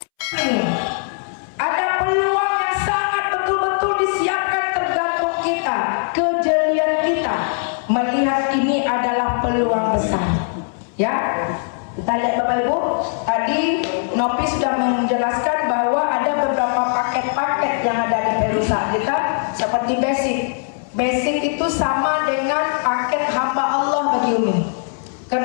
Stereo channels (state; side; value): silent; right; 66 dB below the other